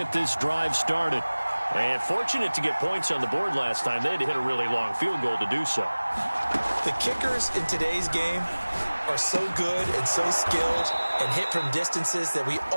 this drive started. And fortunate to get points on the board last time. They had to hit a really long field goal to do so. The kickers in today's game are so good and so skilled and hit from distances that we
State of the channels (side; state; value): both; inverted; correlation -1.00